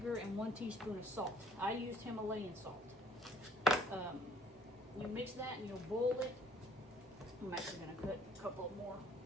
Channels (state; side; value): normal; both; correlation 0.57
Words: and 1 teaspoon of salt. I used Himalayan salt. You mix that and you'll boil it. I'm actually going to cut a couple more